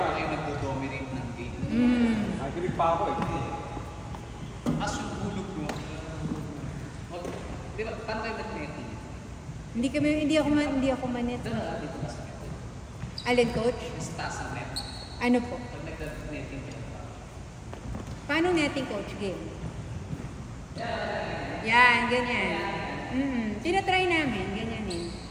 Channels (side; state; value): both; identical; correlation 1.00